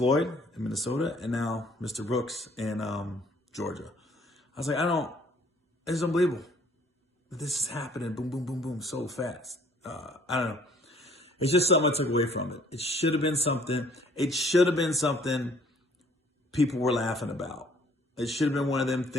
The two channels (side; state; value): both; normal; correlation 0.59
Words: in Minnesota, and now Mr. Brooks in Georgia. I was like, it's unbelievable that this is happening, boom, boom, boom, boom, so fast. I don't know. It's just something I took away from it. It should have been something people were laughing about. It should have been one of them